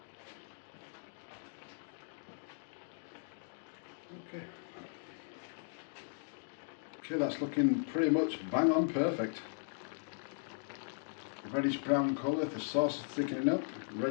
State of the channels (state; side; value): silent; right; digital silence